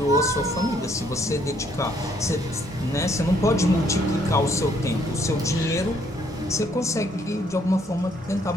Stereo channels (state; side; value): normal; both; correlation 0.67